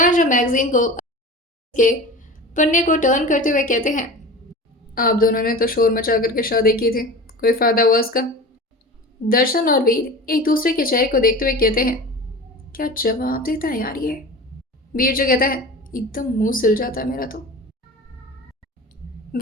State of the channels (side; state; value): both; normal; correlation 0.34